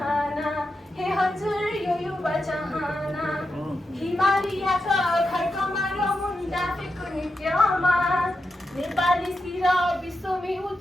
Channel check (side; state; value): both; normal; correlation 0.88